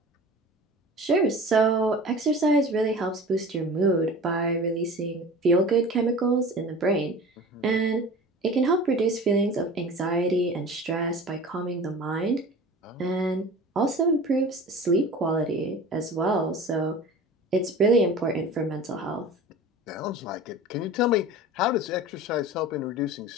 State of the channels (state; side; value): normal; both; correlation 0.38